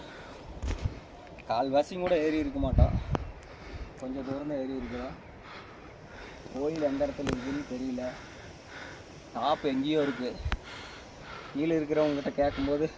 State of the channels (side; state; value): both; identical; correlation 1.00